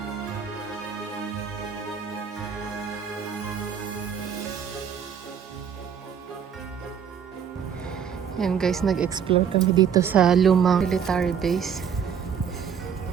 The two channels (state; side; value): quieter; left; 7.7 dB